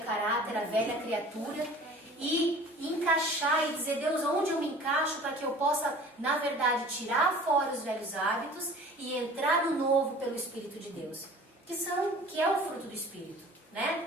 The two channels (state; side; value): normal; both; correlation 0.45